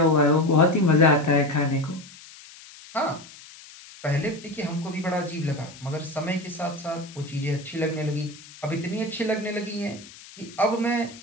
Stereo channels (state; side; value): noise; left; hiss, 19 dB below the sound